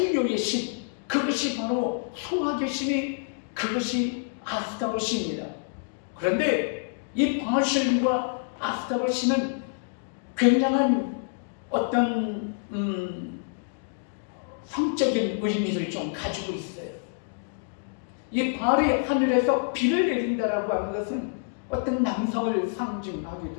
신, 그것이 바로 소화의 신이, 그것이 아스타롯입니다. 그런데 이 바알 신과 아스타롯 신은 굉장한 어떤 성적인 의미를 좀 가지고 있어요. 이 바알이 하늘에서 비를 내린다라고 하는 것은 어떤 남성을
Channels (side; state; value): right; silent; digital silence